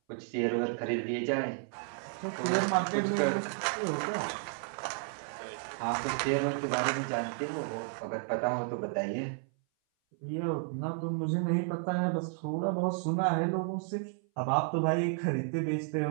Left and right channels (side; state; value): left; silent; 56 dB below the other